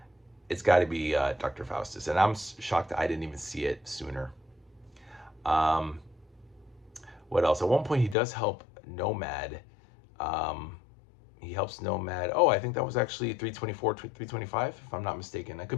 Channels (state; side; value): drops out; right; at 8.2 s